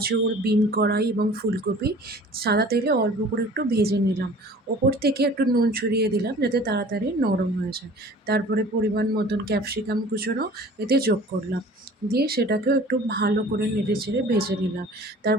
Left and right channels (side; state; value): both; normal; correlation 0.46